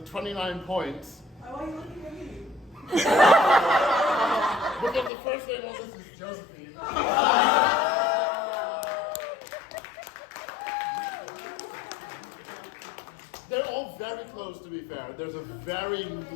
29 points. Why are you looking at me? Because the first name on this is Josephine. They're all very close, to be fair. There's a very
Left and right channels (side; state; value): right; drops out; at 5.1 s